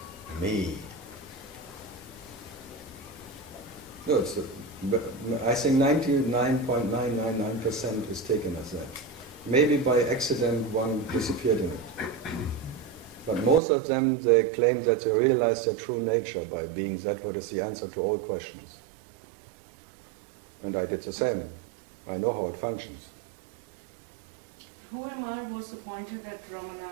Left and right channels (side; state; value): left; drops out; at 13.6 s